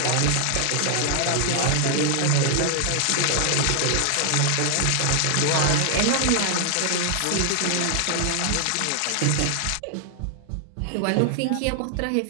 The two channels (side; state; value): both; different; correlation 0.00